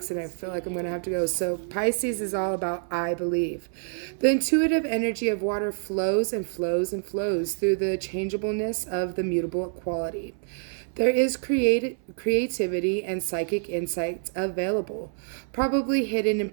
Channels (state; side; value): silent; left; 60 dB below the other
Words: and I feel like I'm going to have to go. So Pisces is all about I believe. The intuitive energy of water flows and flows and flows through the changeableness of the mutable quality. There is creativity and psychic insights available, probably hidden in